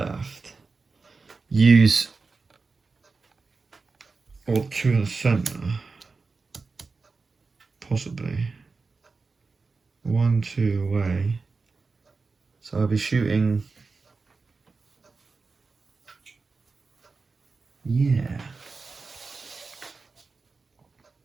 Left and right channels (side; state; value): left; quieter; 4.2 dB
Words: Use... or 2 in the centre. Possibly. 1, 2 away. So I'll be shooting... Yeah.